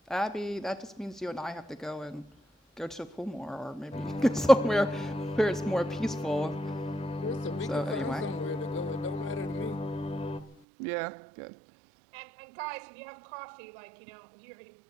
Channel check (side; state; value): left; drops out; at 10.6 s